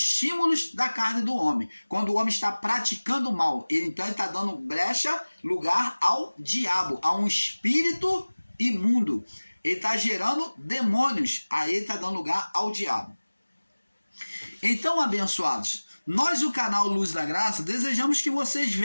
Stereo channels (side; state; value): both; inverted; correlation -1.00